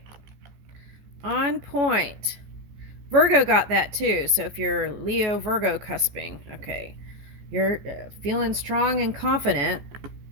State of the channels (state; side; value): late; left; 15 ms